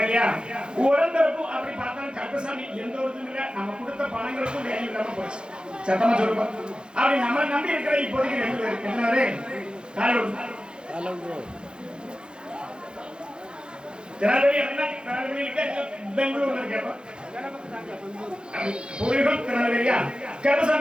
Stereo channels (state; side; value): late; left; 0.050 ms